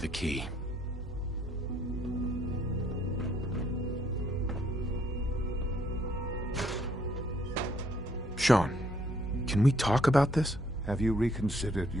the key. Sean, can we talk about this? Have you reconsidered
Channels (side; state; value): both; normal; correlation 0.67